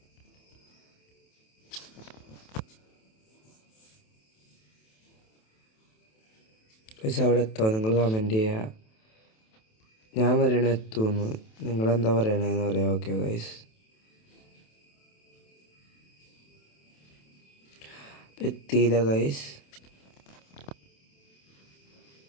ഗൈസ് അവിടെ എത്തോ? നിങ്ങൾ കമൻറ്റ് ചെയ്യുക. ഞാൻ പറയണ എത്തുമെന്ന്, നിങ്ങളെന്താ പറയണതെന്ന് പറയാം. ഓക്കെ ഗൈസ്, എത്തിയില്ല ഗൈസ്.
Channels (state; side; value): late; right; 27 ms